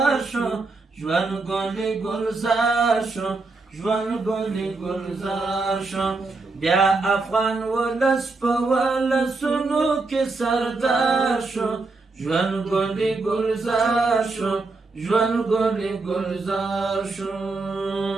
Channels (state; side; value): quieter; left; 3.7 dB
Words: شو ژوند ګلې ګلزار شو ژوند ګلې ګلزار شو بیا افغان ولس په ولسونو کې سردار شو ژوند ګلې ګلزار شو ژوند ګلې ګلزار شو